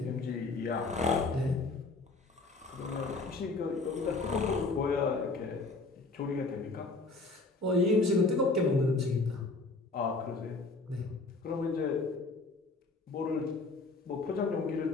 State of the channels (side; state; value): right; quieter; 3.5 dB